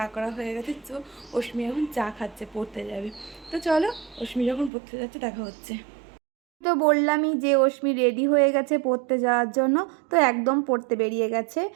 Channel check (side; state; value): left; drops out; at 4.7 s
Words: করা হয়ে গেছে। তো অশ্মি এখন চা খাচ্ছে, পড়তে যাবে। তো চলো, অশ্মি যখন পড়তে যাচ্ছে দেখা হচ্ছে। তো বললামই যে অশ্মি রেডি হয়ে গেছে পড়তে যাওয়ার জন্য। তো একদম পড়তে বেরিয়ে গেছে।